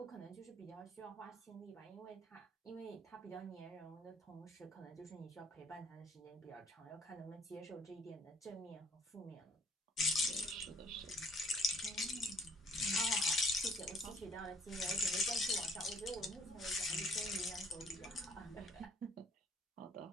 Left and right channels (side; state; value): both; normal; correlation 0.64